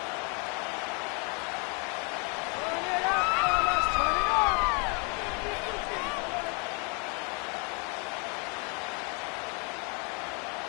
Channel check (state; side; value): quieter; right; 34.8 dB